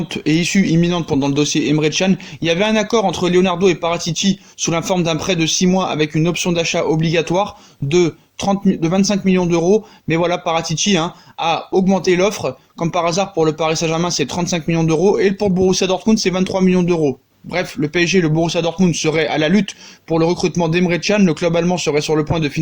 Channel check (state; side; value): identical; both; correlation 1.00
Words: et issue imminente pendant le dossier Emre Can. Il y avait un accord entre Leonardo et Paratici sous la forme d'un prêt de 6 mois avec une option d'achat obligatoire de 25 millions d'euros. Mais voilà, Paratici a augmenté l'offre. Comme par hasard, pour le Paris Saint-Germain, c'est 35 millions d'euros. Et pour Borussia Dortmund, c'est 23 millions d'euros. Bref, le PSG et le Borussia Dortmund seraient à la lutte pour le recrutement d'Emre Can. Le club allemand serait sur le point de